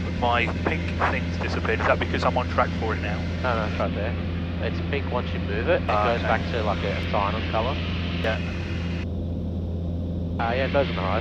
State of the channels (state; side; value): identical; both; correlation 1.00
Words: My pink thing's disappeared. Is that because I'm on track for it now? No, it's right there. It's pink once you move it. It goes back to like a cyan colour. Yeah. Yeah, it goes on the